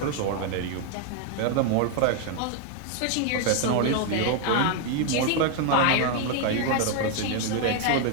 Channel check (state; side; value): different; both; correlation 0.01